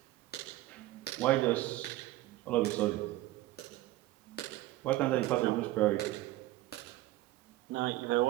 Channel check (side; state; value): left; quieter; 16.8 dB